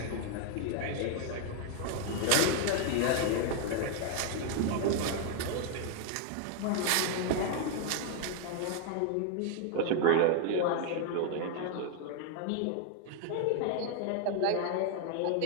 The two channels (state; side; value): different; both; correlation 0.00